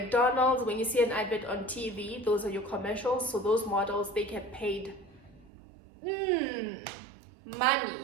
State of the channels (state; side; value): drops out; left; at 5.5 s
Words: when you see an advert on TV, those are your commercials. So those models, they get paid